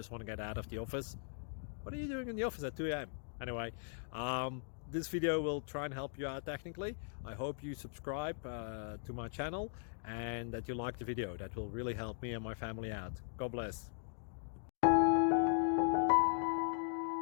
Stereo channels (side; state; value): right; silent; digital silence